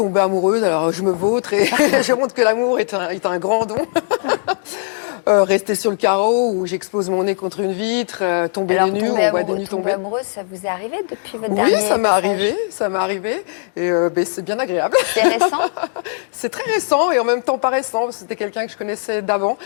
amoureuse, alors je me vautre et je montre que l'amour est un grand don. Rester sur le carreau où j'expose mon nez contre une vitre, tomber Alors, les nues, on voit des nues tomber. Amoureuse, ça vous est arrivé depuis votre Oui, dernier ça m'est passage? arrivé et c'est bien agréable. C'est récent? C'est très récent et en même temps pas récent. C'était quelqu'un que je connaissais d'avant,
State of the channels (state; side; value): silent; right; digital silence